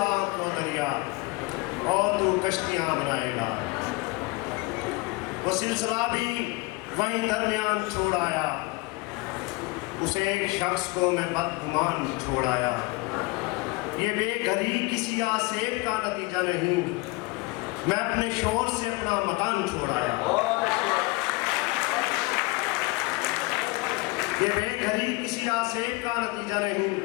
आपको दरिया और तू कश्तियां बनाएगा। वो सिलसिला भी वहीं दरमियान छोड़ आया, उसे एक शख्स को मैं बदगुमान छोड़ आया। ये बेघरी किसी आसेब का नतीजा नहीं, मैं अपने शोर से अपना मकान छोड़ आया। ये बेघरी किसी आसेब का नतीजा नहीं,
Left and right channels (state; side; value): quieter; right; 24.0 dB